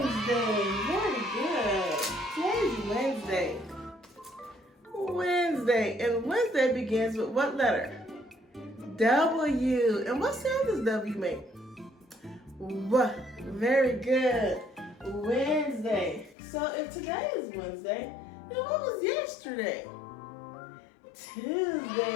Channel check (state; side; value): drops out; right; at 16.4 s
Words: Very good. Today's Wednesday. Wednesday. And Wednesday begins with what letter? W. And what sound does W make? W. Very good. Wednesday. So if today is Wednesday, then what was yesterday?